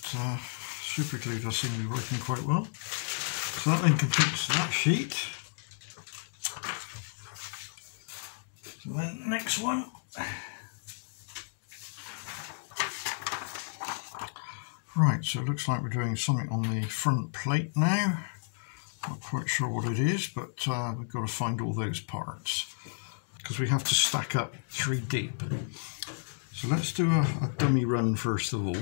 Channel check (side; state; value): right; silent; digital silence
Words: But super glue does seem to be working quite well. So that then completes that sheet. So then next one. Right, so it looks like we're doing something on the front plate now. Not quite sure what it is, but we've got to find all those parts because we have to stack up 3 deep. So let's do a dummy run first of